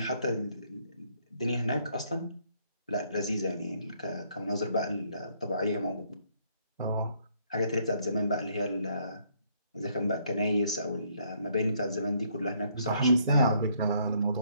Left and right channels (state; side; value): inverted; both; correlation -0.68